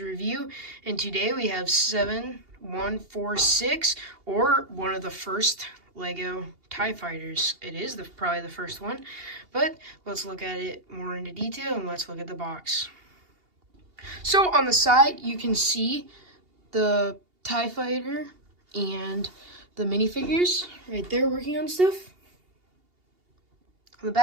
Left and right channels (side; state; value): left; late; 2.8 ms